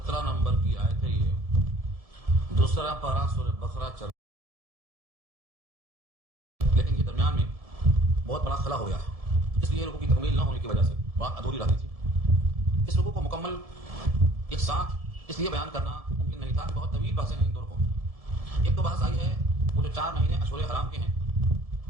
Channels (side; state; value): left; late; 1.7 ms